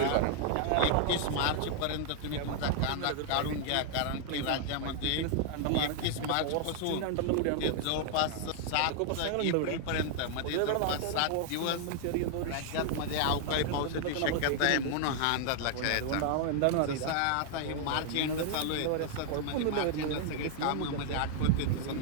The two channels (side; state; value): both; different; correlation 0.00